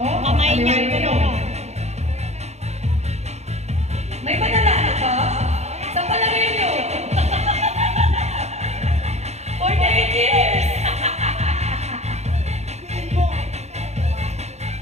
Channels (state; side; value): late; left; 0.32 ms